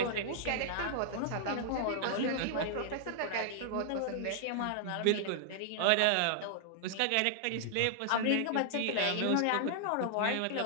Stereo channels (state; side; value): different; both; correlation -0.01